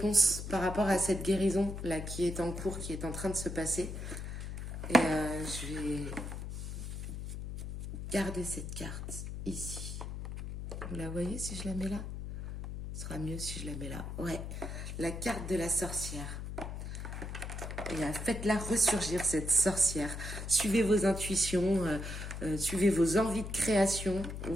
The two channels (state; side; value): noise; left; hum, 6 dB below the sound